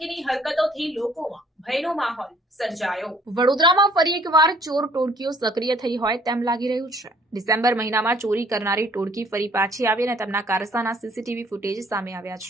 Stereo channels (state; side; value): normal; both; correlation 0.59